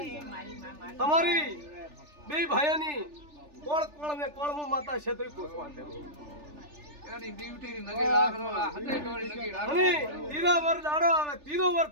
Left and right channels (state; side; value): late; left; 3.4 ms